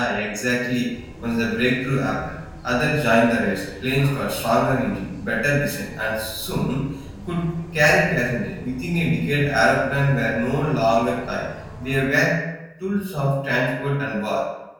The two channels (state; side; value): identical; both; correlation 1.00